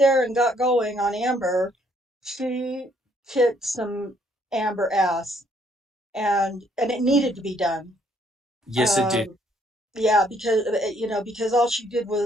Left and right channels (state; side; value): normal; both; correlation 0.67